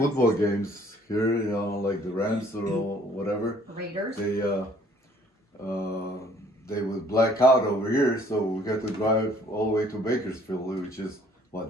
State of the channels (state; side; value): normal; both; correlation 0.59